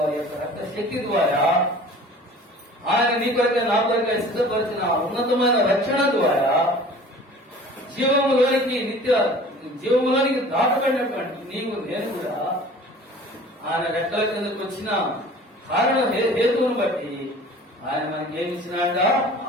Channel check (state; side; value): normal; both; correlation 0.45